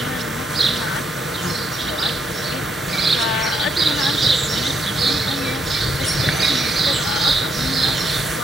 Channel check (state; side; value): noise; left; hum, 21 dB below the sound